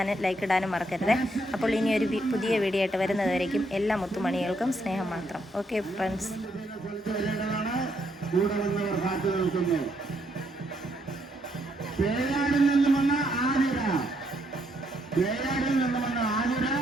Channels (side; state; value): both; normal; correlation 0.74